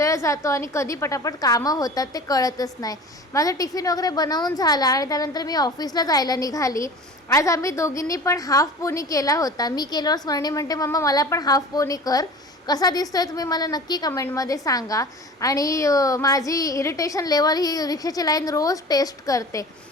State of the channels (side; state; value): both; normal; correlation 0.39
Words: जातो आणि कधी पटापट कामं होतात ते कळतच नाही. माझं टिफिन वगैरे बनवून झाला आणि त्यानंतर मी ऑफिसला जायला निघाली. आज आम्ही दोघींनी पण हाफ पोनी केला होता. मी केल्यावर स्मरणी म्हणते, मम्मा मला पण हाफ पोनी कर. कसा दिसतोय तुम्ही मला नक्की कमेंटमध्ये सांगा. आणि माझी इरिटेशन लेवल ही रिक्षाची लाईन रोज टेस्ट करते.